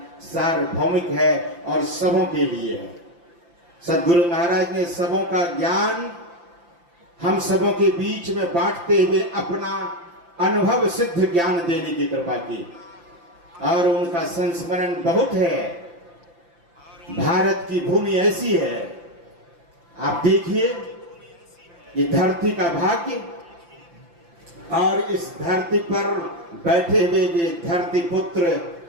सार्वभौमिक है और सबों के लिए है। सदगुरु महाराज ने सबों का ज्ञान हम सबों के बीच में बांटते हुए अपना अनुभव सिद्ध ज्ञान देने की कृपा की, और उनका संस्मरण बहुत है। भारत की भूमि ऐसी है, आप देखिए, ये धरती का भाग्य, और इस धरती पर बैठे हुए वे धरती पुत्र,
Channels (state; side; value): late; left; 5.8 ms